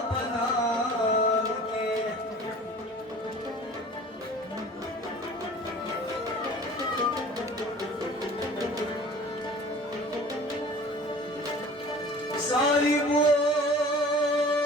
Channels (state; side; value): normal; both; correlation 0.44